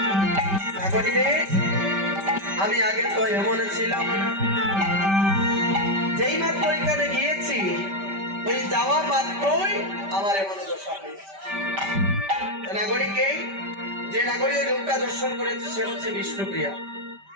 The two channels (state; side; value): late; left; 5.1 ms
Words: নাগরী রে, আমি আগে তো এমন ছিলাম না। যেই মাত্র ওইখানে গিয়েছি, ওই যাওয়া মাত্রই আমার এমন দশা হয়েছে। নাগরীকে, যে নাগরী ওই রূপটা দর্শন করেছে সে হচ্ছে বিষ্ণুপ্রিয়া।